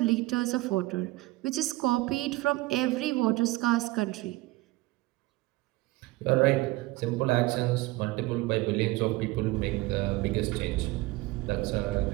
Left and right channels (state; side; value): quieter; left; 20.2 dB